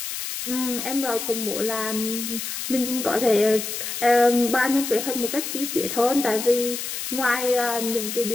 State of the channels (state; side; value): noise; left; hiss, 5 dB below the sound